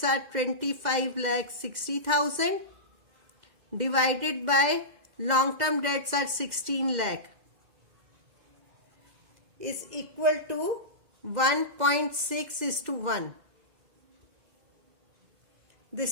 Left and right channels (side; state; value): left; late; 2.2 ms